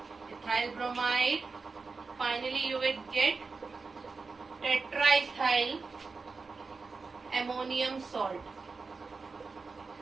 ethyl bromide. Finally you will get tetraethyl ammonium salt.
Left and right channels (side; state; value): left; quieter; 4.4 dB